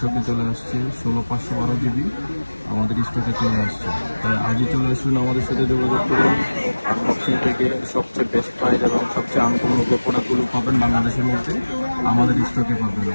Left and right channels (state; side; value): inverted; both; correlation -1.00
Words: চলে আসছে। 16/512GB আমাদের স্টকে চলে আসছে। তাই আজই চলে আসুন, আমাদের সাথে যোগাযোগ করুন। আনবক্সিং থেকে সবচেয়ে বেস্ট প্রাইস এবং সবচেয়ে আনকমন প্রোডাক্টগুলো পাবেন বাংলাদেশের মধ্যে আমাদের স্টকে পাবেন।